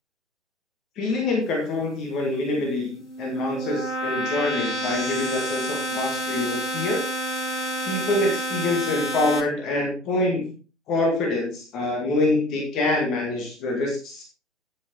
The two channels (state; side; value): normal; both; correlation 0.45